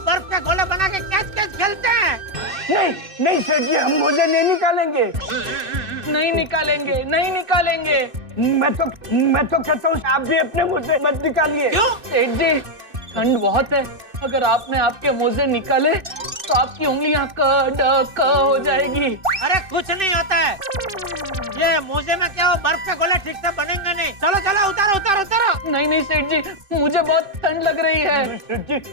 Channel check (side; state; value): left; late; 2.6 ms